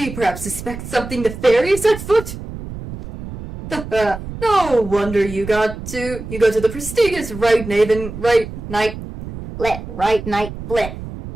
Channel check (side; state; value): right; noise; rumble, 10 dB below the sound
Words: you perhaps suspect something nefarious at foot? No wonder you go to the prestigious Right Night Blit.